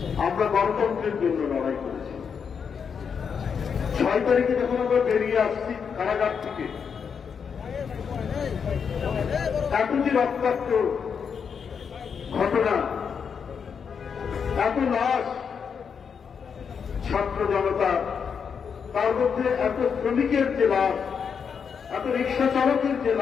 আমরা গণতন্ত্রের জন্য লড়াই করেছি। 6 তারিখে যখন আমরা বেরিয়ে আসছি কারাগার থেকে, এত যে রক্তাক্ত ঘটনা, এত লাশ, ছাত্র জনতা, তার মধ্যে এত শ্রমিকের যে লাশ, এত রিক্সা চালকের যে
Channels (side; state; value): right; quieter; 6.6 dB